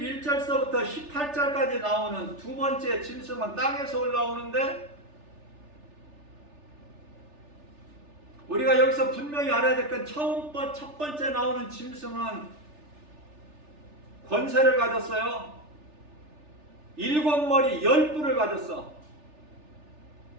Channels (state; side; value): late; left; 3.4 ms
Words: 18절까지 나오는 두 번째 짐승은 땅에서 올라오는데, 우리가 여기서 분명히 알아야 될 건 첫 번째 나오는 짐승은 권세를 가졌어요. 7머리 10뿔을 가졌어.